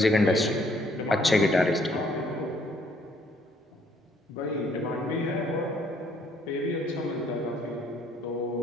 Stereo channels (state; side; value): normal; both; correlation 0.65